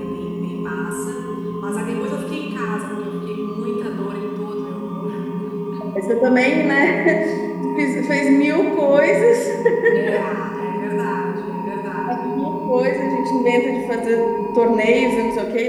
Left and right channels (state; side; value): identical; both; correlation 1.00